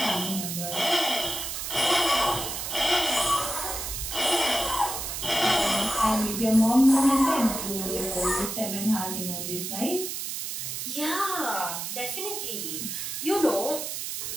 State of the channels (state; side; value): noise; right; hiss, 5 dB below the sound